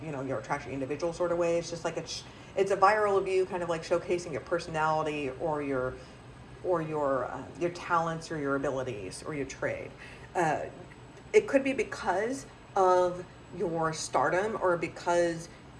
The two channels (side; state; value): both; identical; correlation 1.00